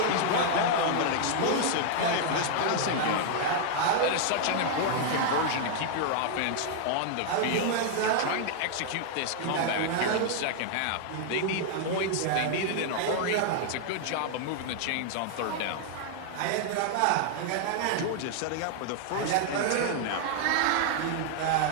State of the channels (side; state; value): both; different; correlation 0.00